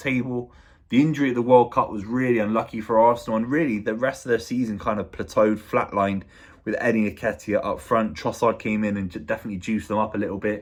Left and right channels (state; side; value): identical; both; correlation 1.00